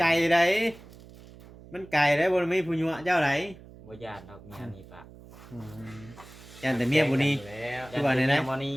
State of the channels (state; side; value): noise; right; hum, 20 dB below the sound